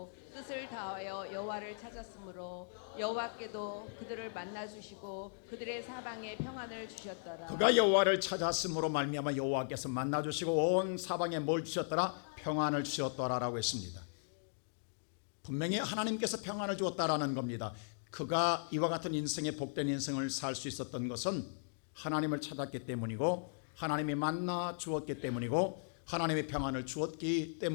뜻을 다하여 여호와를 찾았으므로 여호와께도 그들을 만나 주시고 그들의 사방에 평안을 주셨더라. 그가 여호와를 찾았으므로 말미암아 여호와께서 만나 주시고 온 사방에 뭘 주셨더라? 평안을 주셨더라라고 했습니다. 분명히 하나님께서 평안을 주었다라는 겁니다. 그가 이와 같은 인생의 복된 인생을 살 수 있었던 것은 하나님을 찾았기 때문이고 하나님이 만나 주었기 때문이고 하나님의 평안을 주었기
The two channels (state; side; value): silent; right; digital silence